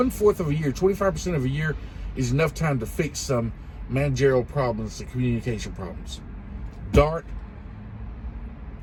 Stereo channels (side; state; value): both; identical; correlation 1.00